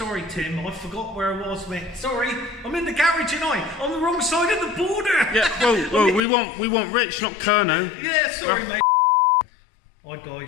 Tim. I forgot where I was, mate. Sorry, I'm in the garage tonight, on the wrong side of the border. Yeah, well, we want Rich, not Kerno. Yeah, sorry, mate. Hi,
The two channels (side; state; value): right; drops out; at 6.2 s